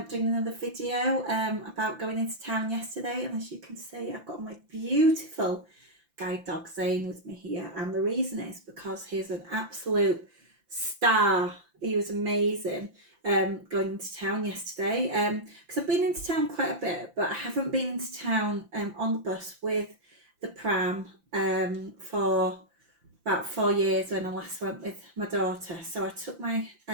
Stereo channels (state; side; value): late; left; 5.8 ms